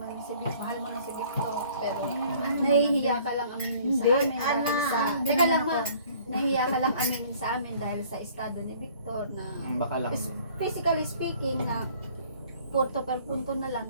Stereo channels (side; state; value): both; inverted; correlation -0.55